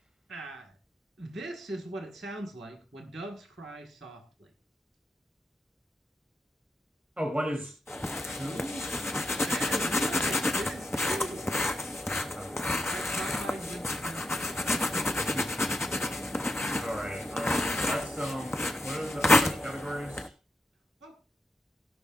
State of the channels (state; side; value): normal; both; correlation 0.83